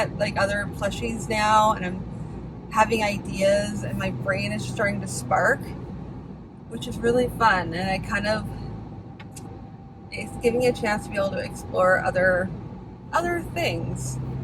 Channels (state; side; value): identical; both; correlation 1.00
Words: like other plushies now, and I'm having ideas, and my brain is starting to spark, which is really fun. And it's giving me a chance to be able to explore other things.